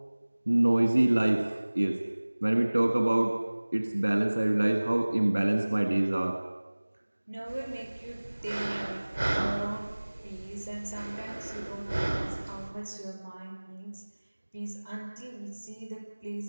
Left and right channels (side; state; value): both; inverted; correlation -1.00